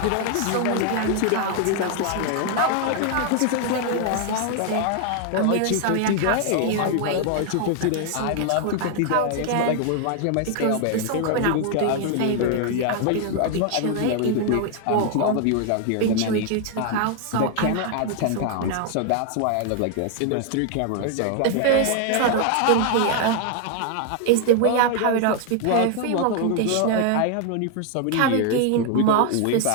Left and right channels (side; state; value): both; different; correlation 0.00